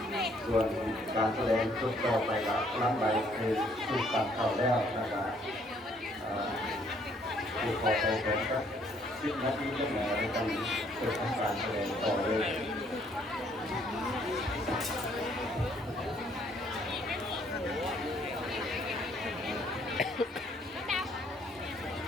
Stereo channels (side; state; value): both; normal; correlation 0.65